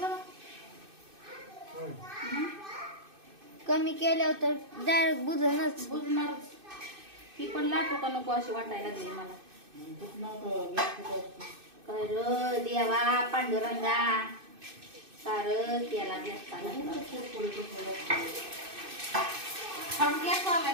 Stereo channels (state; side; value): late; left; 2.6 ms